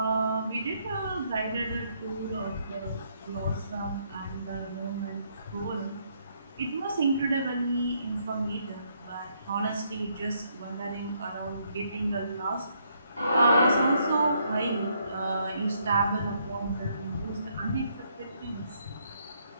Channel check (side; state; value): both; inverted; correlation -0.72